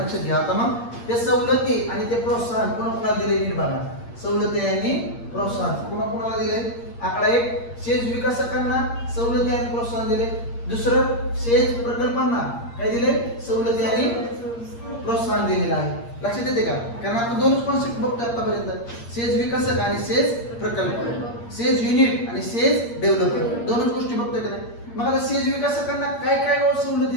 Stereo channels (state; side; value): late; right; 8.6 ms